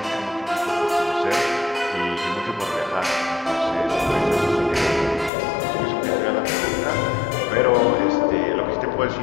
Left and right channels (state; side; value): drops out; right; at 5.3 s